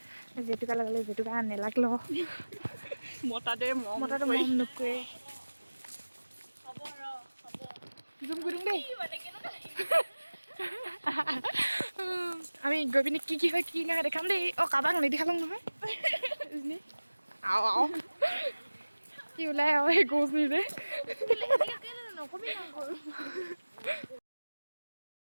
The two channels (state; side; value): inverted; both; correlation -1.00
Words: জেতুকা লগালে জেতুকা নেলাগিল মতাটো মৰম নকৰে জুম কৰি দিওঁ দেই আমি গৈ পিনে কি হয় কি নাই দেখাম দেই অঁ কাৰোবাক নেদেখালোঁ নহয় আও কি ওলাই আৰু সেই গছ নিজে নকবি